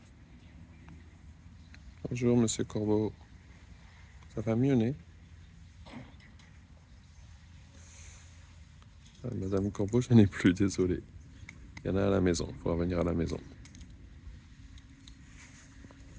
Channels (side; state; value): both; identical; correlation 1.00